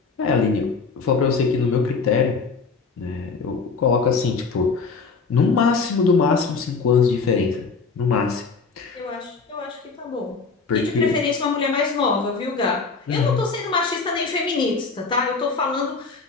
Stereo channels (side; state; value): right; quieter; 4.7 dB